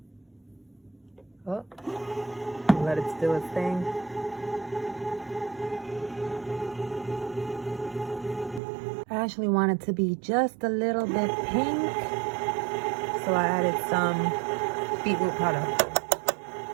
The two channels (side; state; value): left; drops out; at 8.6 s